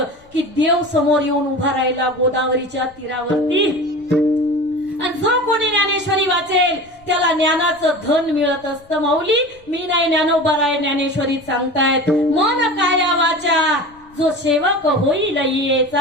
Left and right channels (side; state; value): left; noise; rumble, 28 dB below the sound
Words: की देव समोर येऊन उभा राहिला गोदावरीच्या तीरावरती. आणि जो कोणी ज्ञानेश्वरी वाचेल त्याला ज्ञानाचं धन मिळत असतं. माऊली मी नाही ज्ञानोबा राय ज्ञानेश्वरी सांगतायत. मन काया वाचा जो सेवक होईल